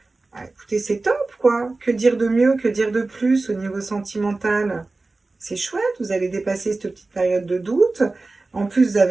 Ah, écoutez, c'est top, quoi. Que dire de mieux, que dire de plus au niveau sentimental? C'est chouette, vous allez dépasser cette petite période de doute. En plus, vous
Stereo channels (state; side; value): quieter; left; 3.4 dB